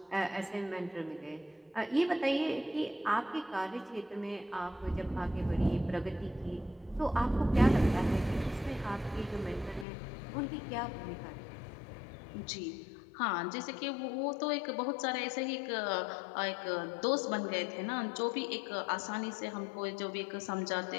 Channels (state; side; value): drops out; right; at 9.9 s